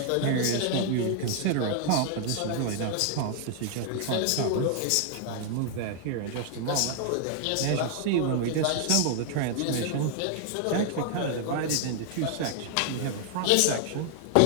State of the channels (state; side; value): different; both; correlation 0.00